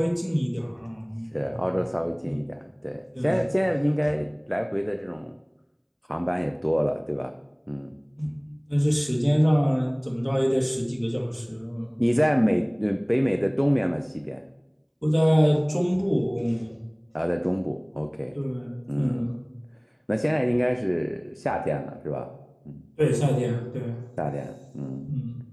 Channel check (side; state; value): both; identical; correlation 1.00